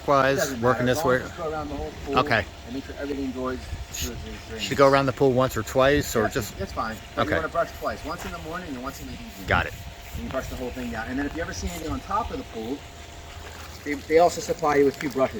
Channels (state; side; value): identical; both; correlation 1.00